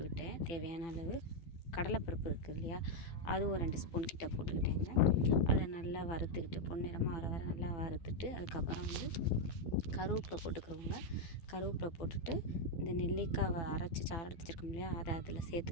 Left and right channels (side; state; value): right; late; 12 ms